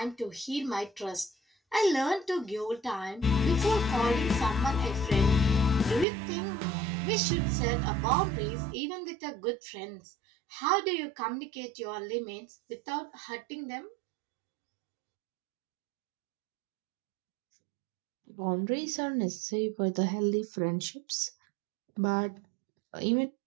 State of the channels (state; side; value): drops out; left; at 6.1 s